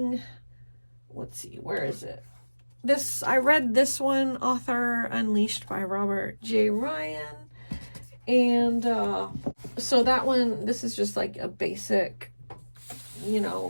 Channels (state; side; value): inverted; both; correlation -1.00